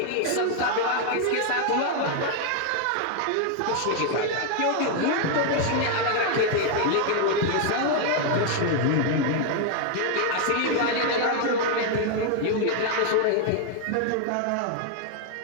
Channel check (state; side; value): different; both; correlation 0.00